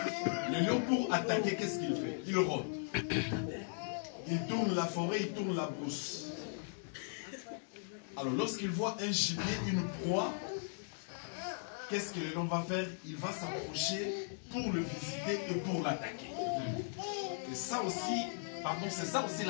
Le lion, pour attaquer, qu'est-ce qu'il fait? Il rôde. Il tourne la forêt, il tourne la brousse. Alors, lorsqu'il voit un gibier, une proie, qu'est-ce que le lion va faire? Il va s'approcher pour le visiter et pour l'attaquer. Et ça aussi, pardon, c'est ça aussi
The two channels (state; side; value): silent; right; digital silence